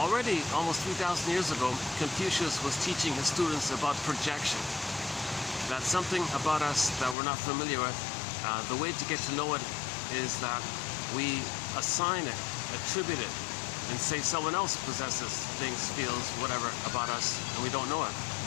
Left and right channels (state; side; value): drops out; right; at 7.2 s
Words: almost 3,000 years ago, Confucius was teaching his students about projection. That's something about us that we're not familiar with. The way to get to know it is that we assign it, attribute it, and say someone else possesses things, feels, whatever about us, and we don't know it.